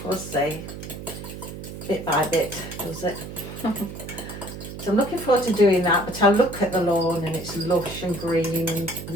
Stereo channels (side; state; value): right; noise; hum, 10 dB below the sound